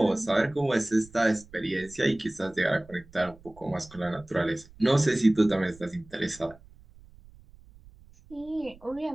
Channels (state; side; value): noise; right; rumble, 23 dB below the sound